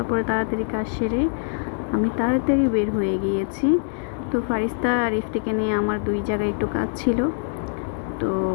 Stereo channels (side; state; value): right; silent; digital silence